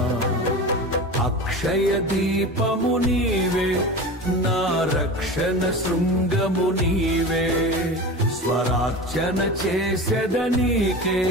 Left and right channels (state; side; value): normal; both; correlation 0.30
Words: అక్షయ దీపము నీవే నా రక్షణ శృంగము నీవే స్వరార్చన చేసేదనీకే